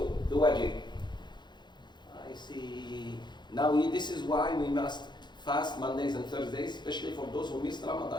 the wajib. I see. Now this is why we must fast Mondays and Thursdays, especially for those who missed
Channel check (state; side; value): late; right; 0.21 ms